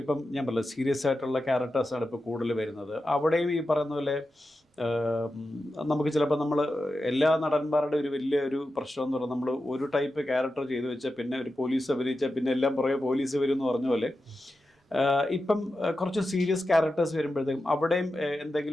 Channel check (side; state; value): both; normal; correlation 0.91